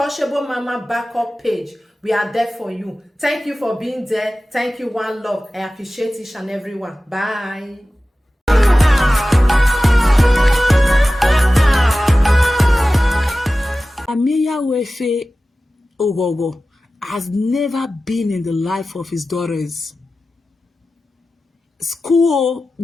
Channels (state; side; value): normal; both; correlation 0.95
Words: Mama backup page. We are there for you. Thank you for being there. Thank you, one love. I appreciate each and everyone. Bye. Ameya Wefe Ogogo has never been in the life of his daughters. School,